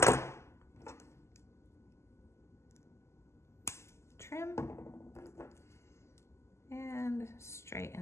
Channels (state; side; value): late; right; 0.13 ms